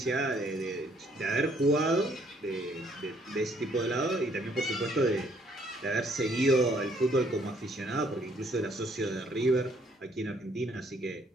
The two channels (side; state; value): both; normal; correlation 0.65